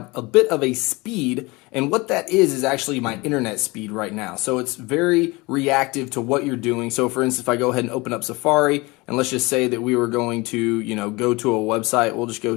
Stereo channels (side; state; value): right; quieter; 24.1 dB